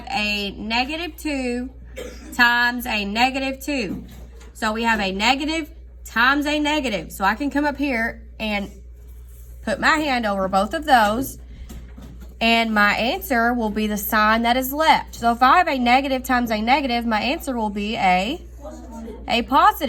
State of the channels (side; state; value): both; identical; correlation 1.00